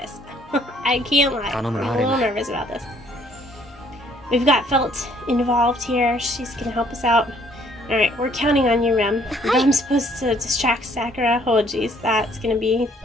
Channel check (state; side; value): normal; both; correlation 0.63